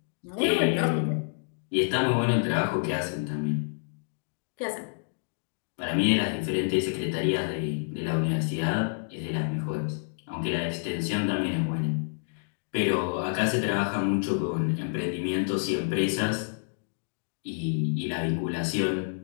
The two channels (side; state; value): right; silent; digital silence